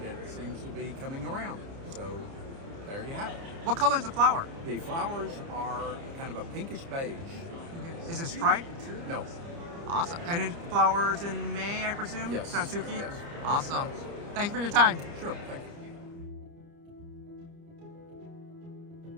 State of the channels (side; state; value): left; late; 30 ms